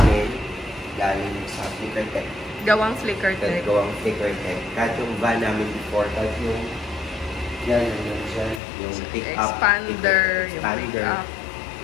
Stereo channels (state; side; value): drops out; right; at 8.6 s